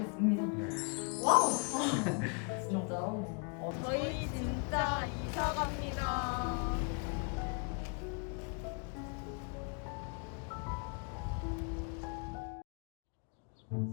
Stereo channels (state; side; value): quieter; right; 37.4 dB